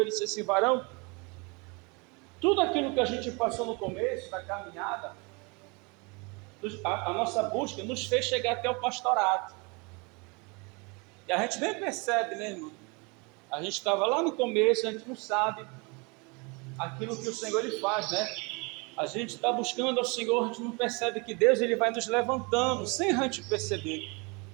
disse assim: varão, tudo aquilo que a gente passou no começo da caminhada, a nossa busca nos fez chegar até o pastorado. E a gente nem percebe, né, irmão? A gente estava lá no começo, a gente não sabe aquilo que o Senhor ele faz, né? A gente está buscando ao Senhor, a gente não percebe que Deus ele vai nos levantando, sem a gente perceber.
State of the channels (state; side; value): quieter; left; 29.7 dB